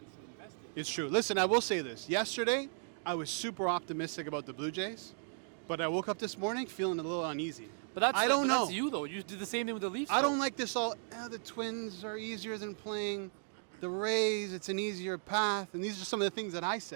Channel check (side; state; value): left; silent; digital silence